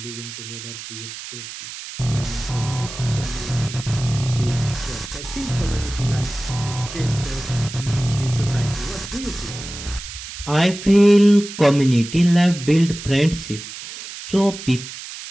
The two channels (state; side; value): noise; right; hiss, 11 dB below the sound